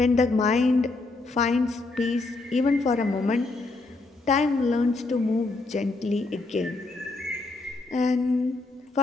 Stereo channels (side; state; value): right; quieter; 3.4 dB